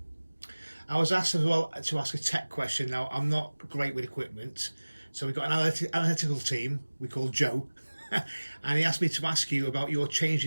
I was asked as well to ask a tech question. Now, I'm not great with equipment. So we've got an analytical team we call Joe, and he asked me to ask you about your change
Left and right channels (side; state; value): both; inverted; correlation -1.00